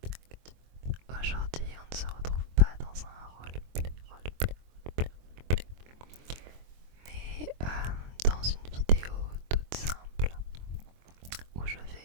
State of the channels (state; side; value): late; left; 23 ms